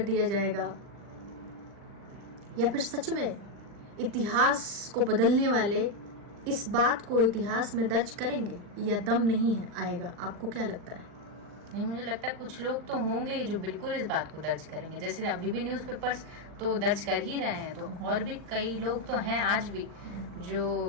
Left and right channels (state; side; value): late; left; 40 ms